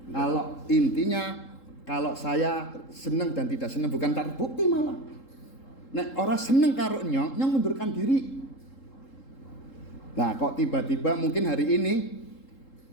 Kalau intinya kalau saya seneng dan tidak seneng bukan terbukti malah. Nek orang seneng karo nyong mundurkan diri. Nah kok tiba-tiba mungkin hari ini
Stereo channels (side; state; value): right; late; 3.7 ms